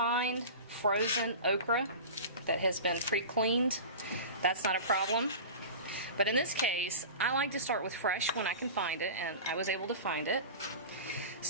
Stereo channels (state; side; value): inverted; both; correlation -0.32